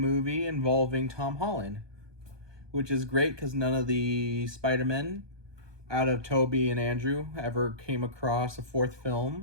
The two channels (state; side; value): late; left; 1.2 ms